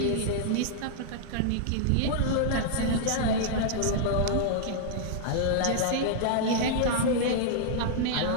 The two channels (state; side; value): different; both; correlation -0.01